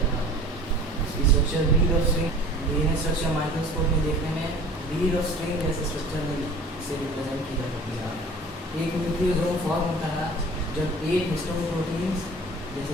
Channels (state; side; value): normal; both; correlation 0.45